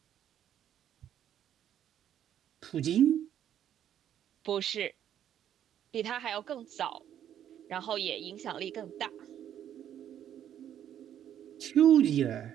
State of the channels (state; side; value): quieter; left; 10.3 dB